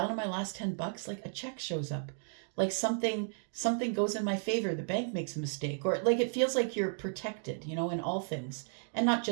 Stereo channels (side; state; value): left; silent; 55 dB below the other